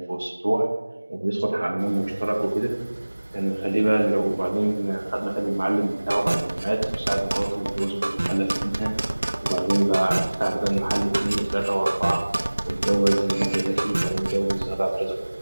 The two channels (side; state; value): both; inverted; correlation -1.00